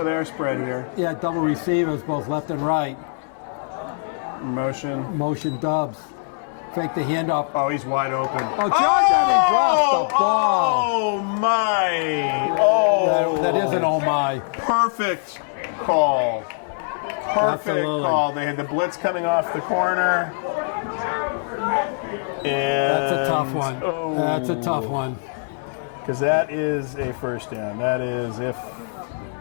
they're spread here. yeah, double receivers, both left and right. Motion. Motion dubs. Fake the handoff. Oh, he's wide open. Oh, George, and he dropped the ball. Oh my! Oh, That is an oh my. Perfect call. Perfect Absolutely. call. They had the blitz coming off the corner. And That's a tough one. Oh, That's a tough one. because that is a first down. That is if.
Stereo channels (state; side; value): silent; right; digital silence